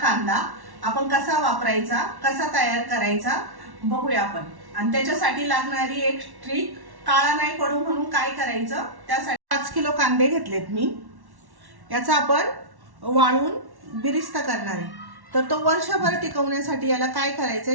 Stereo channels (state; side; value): late; left; 1.1 ms